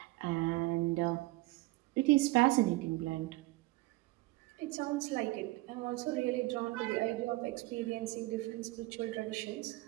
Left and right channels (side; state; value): left; quieter; 20.8 dB